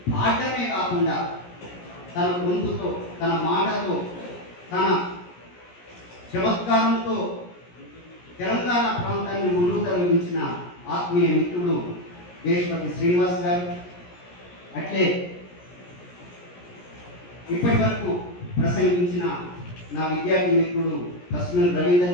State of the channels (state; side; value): late; right; 17 ms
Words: పాడటమే కాకుండా తన గొంతుతో, తన మాటతో, తన చమత్కారంతో తెలంగాణ ప్రాంతాన్ని ముందుకు తరలించిన ఆత్మీయ మిత్రుడు దేశపతి శ్రీనివాస్ గారు. అట్లే ఇప్పటి వరకు ప్రసంగించిన నా విద్యార్థి మిత్రుడు కస్మల్